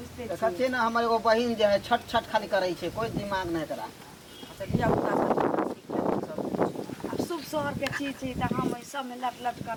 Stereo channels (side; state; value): both; identical; correlation 1.00